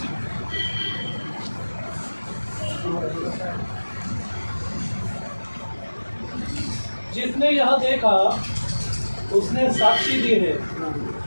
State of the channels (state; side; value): inverted; both; correlation -1.00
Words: जिसने यह देखा उसने साक्षी दी है